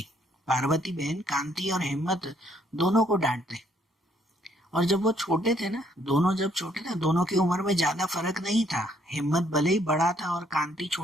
पार्वती बहन कांति और हिम्मत दोनों को डांटते। और जब वो छोटे थे ना, दोनों की उम्र में ज्यादा फर्क नहीं था। हिम्मत भले ही बड़ा था और कांति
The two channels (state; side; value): normal; both; correlation 0.68